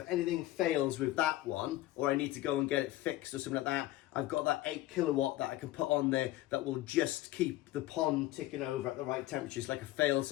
anything fails with that one, or I need to go and get it fixed or something like that, I've got that 8 kilowatt that I can put on there that will just keep the pond ticking over at the right temperature. It's like a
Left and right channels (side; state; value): right; quieter; 15.9 dB